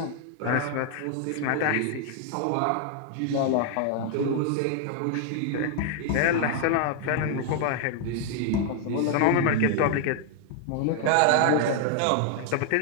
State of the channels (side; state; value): both; different; correlation 0.00